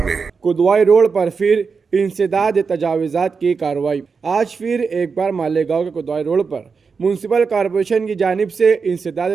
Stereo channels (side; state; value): left; quieter; 5.3 dB